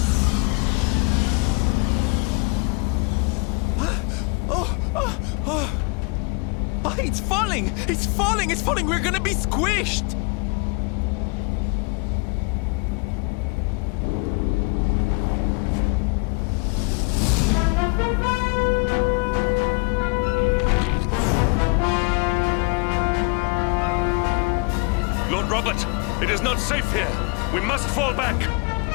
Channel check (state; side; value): quieter; right; 31.2 dB